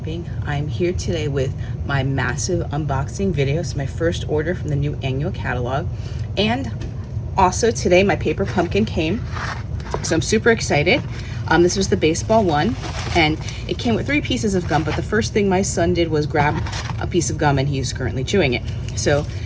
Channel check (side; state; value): both; identical; correlation 1.00